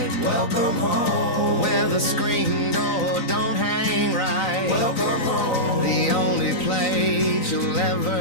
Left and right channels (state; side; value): late; right; 3.9 ms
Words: Welcome home, where the screen door don't hang right. Welcome home, the only you'll